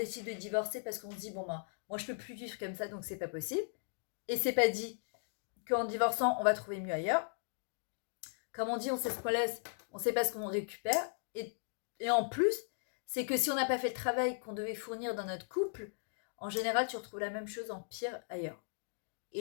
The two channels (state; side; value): silent; right; digital silence